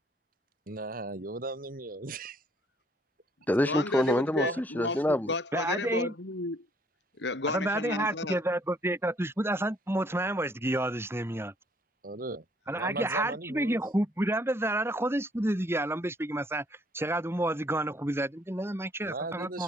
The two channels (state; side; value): normal; both; correlation 0.64